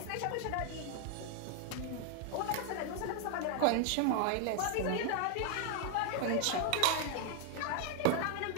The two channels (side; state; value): both; different; correlation 0.00